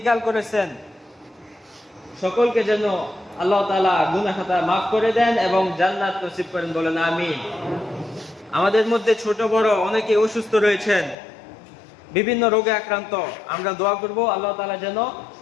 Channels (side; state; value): right; drops out; at 11.2 s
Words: করেছেন, সকলকে যেন আল্লাহ তাআলা গুনাহ খাতা মাফ করে দেন এবং জান্নাত নসিব করেন, বলেন আমিন। আমাদের মধ্যে ছোট বড় অনেকে অসুস্থ রয়েছেন, বিভিন্ন রোগে আক্রান্ত, আমরা দোয়া করব আল্লাহ তাআলা যেন